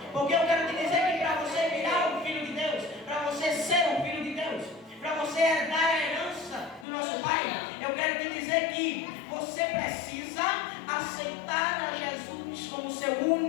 Porque eu quero te dizer que para você virar um filho de Deus, para você ser um filho de Deus, para você herdar a herança do nosso Pai, eu quero te dizer que você precisa aceitar a Jesus como seu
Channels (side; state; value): right; drops out; at 6.9 s